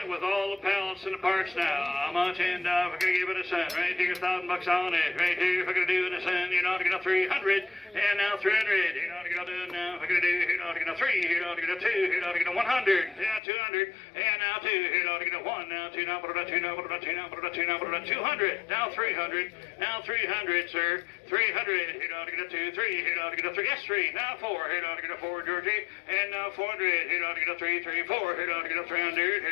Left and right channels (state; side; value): drops out; right; at 13.4 s